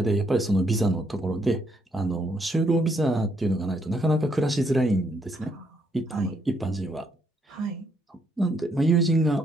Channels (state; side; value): normal; both; correlation 0.73